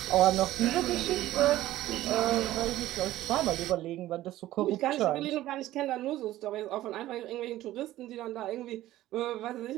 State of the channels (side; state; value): left; quieter; 15.0 dB